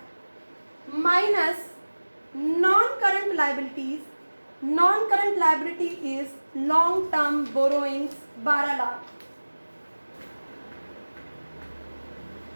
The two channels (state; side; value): inverted; both; correlation -1.00